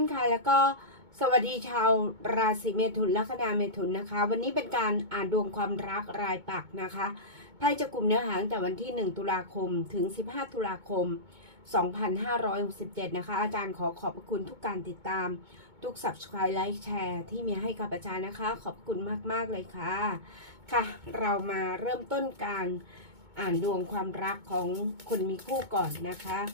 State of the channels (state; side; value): late; left; 2.2 ms